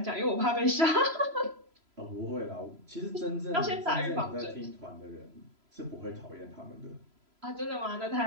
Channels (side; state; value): left; late; 3.0 ms